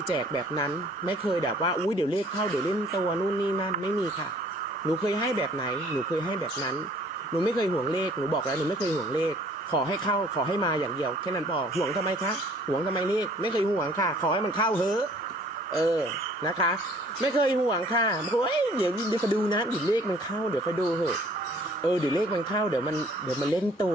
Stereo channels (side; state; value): both; normal; correlation 0.56